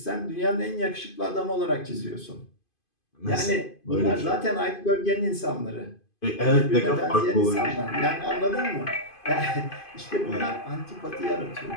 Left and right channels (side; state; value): right; late; 2.5 ms